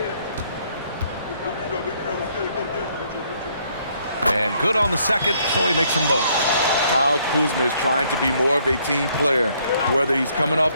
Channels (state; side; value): inverted; both; correlation -0.67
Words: And good on the second, so he makes them both. Kyle Kuzma is trying to be more of a team player. Whether he's coming off